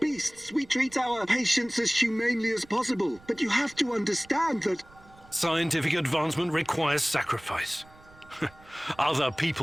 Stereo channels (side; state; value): right; noise; rumble, 25 dB below the sound